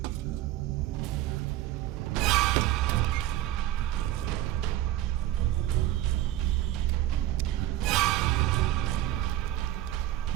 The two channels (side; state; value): left; quieter; 13.8 dB